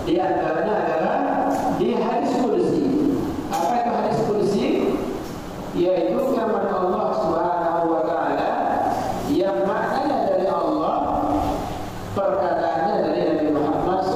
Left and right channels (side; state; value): both; identical; correlation 1.00